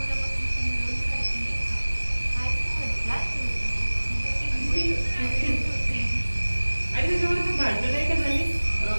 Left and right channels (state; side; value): inverted; both; correlation -1.00